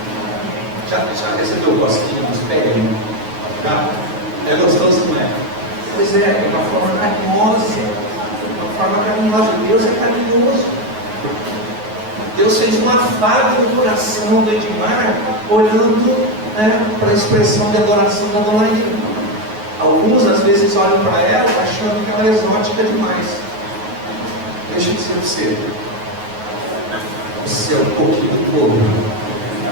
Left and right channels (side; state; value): left; late; 9.4 ms